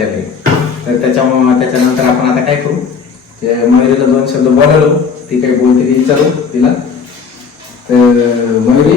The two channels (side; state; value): right; quieter; 5.9 dB